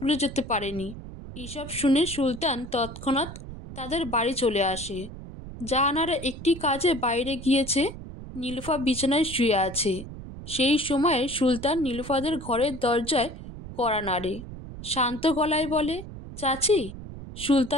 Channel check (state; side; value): noise; right; rumble, 12 dB below the sound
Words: যেতে পারেনি। এসব শুনে সুলতান তৎক্ষণাৎ তাদের বাড়ি চলে আসে। জাহানারা একটি কাজে বাইরে গিয়েছে। নীলুফা বিছানায় শুয়ে আছে। সেই সময়ে সুলতান নীলুফাদের ঘরের দরজায় কড়া নাড়ে। শান্ত গলায় বলে, চাচি।